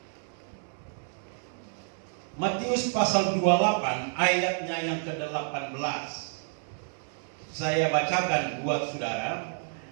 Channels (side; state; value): left; silent; 58 dB below the other